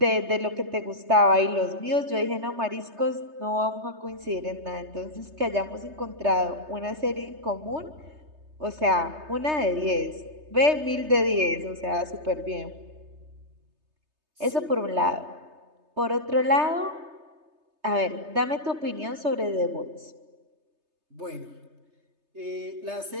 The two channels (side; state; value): left; late; 3.3 ms